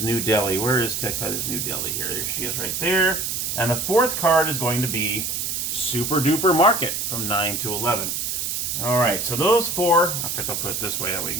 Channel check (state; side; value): noise; right; hiss, 2 dB below the sound